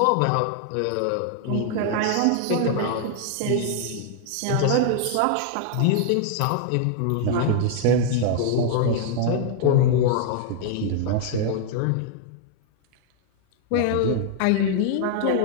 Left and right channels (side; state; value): both; different; correlation 0.00